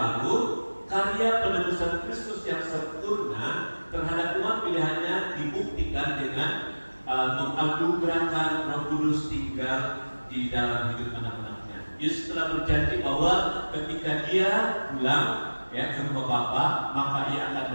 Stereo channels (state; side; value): inverted; both; correlation -1.00